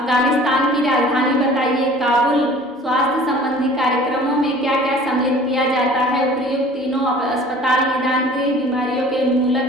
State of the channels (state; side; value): normal; both; correlation 0.47